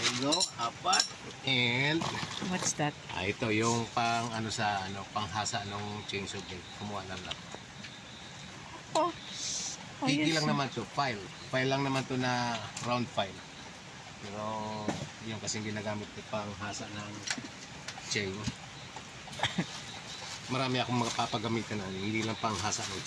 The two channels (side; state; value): both; identical; correlation 1.00